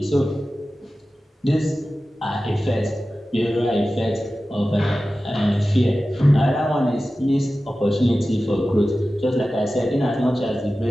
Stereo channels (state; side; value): normal; both; correlation 0.95